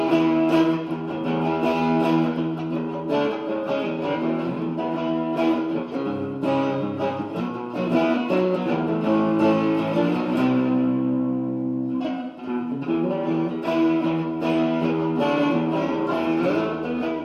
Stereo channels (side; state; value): both; identical; correlation 1.00